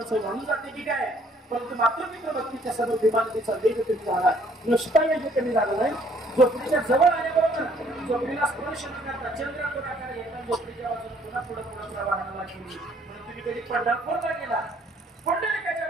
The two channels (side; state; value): both; normal; correlation 0.62